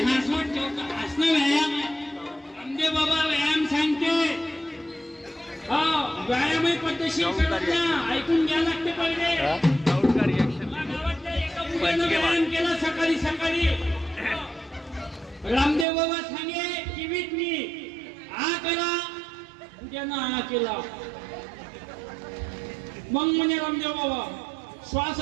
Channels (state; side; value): drops out; left; at 15.9 s